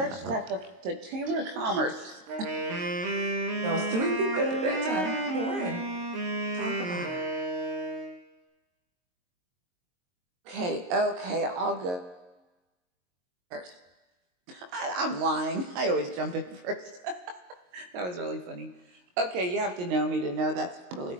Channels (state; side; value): late; left; 22 ms